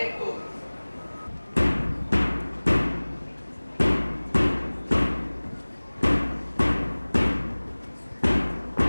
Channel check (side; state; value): both; inverted; correlation -1.00